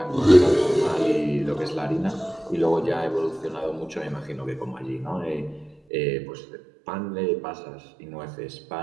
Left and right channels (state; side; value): drops out; left; at 5.8 s